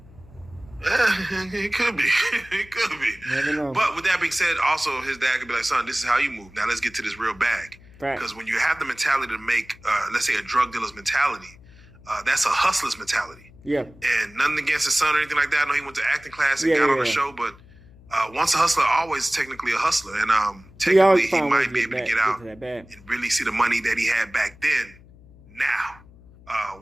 It could be. It could be. Never know. But with that being said, also his dad could be like, "Son, this is how you move. Now let's get to this real bag." Because when you have the mentality to make, let's say, a drug dealer's mentality, that's a hustler's mentality. Yeah. And nothing against his son or anything like that. I know he went to acting class and Yeah, got yeah, on the yeah. show, but once a hustler, always technically a hustler. And technically, he might be able to get out and really see the money that he had back then.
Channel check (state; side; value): noise; left; hum, 24 dB below the sound